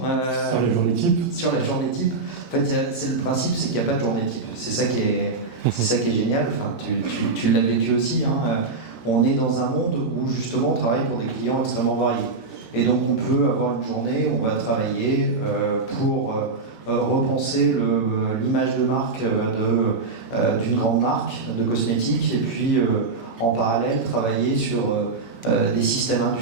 sur la journée type, en fait, c'est le principe, c'est qu'il n'y a pas de journée type. C'est ça qui est génial. Enfin, tu l'as vécu aussi. Hein. On est dans un monde où justement on travaille pour des clients extrêmement variés. Et donc on peut avoir une journée où on va travailler pour repenser l'image de marque d'une grande marque de cosmétiques et puis en parallèle travailler sur des systèmes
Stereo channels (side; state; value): left; quieter; 3.9 dB